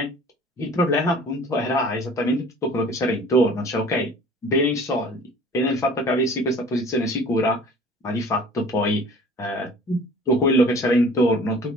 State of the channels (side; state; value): both; normal; correlation 0.47